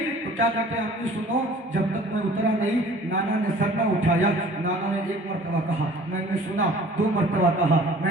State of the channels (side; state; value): both; normal; correlation 0.49